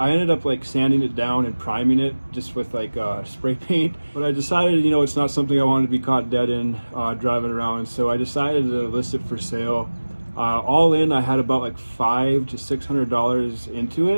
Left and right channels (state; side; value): inverted; both; correlation -1.00